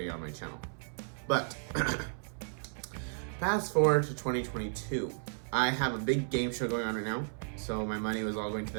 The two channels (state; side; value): silent; left; 55 dB below the other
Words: on my channel. But fast forward to 2022. I have a big game show going on right now, so my money was all going to